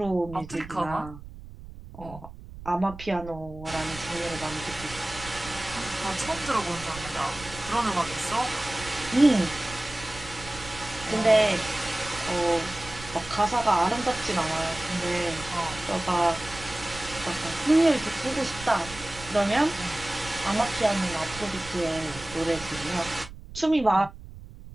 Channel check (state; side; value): noise; right; rumble, 15 dB below the sound